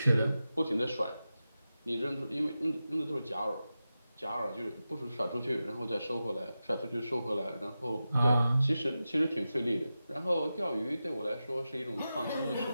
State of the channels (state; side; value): inverted; both; correlation -0.92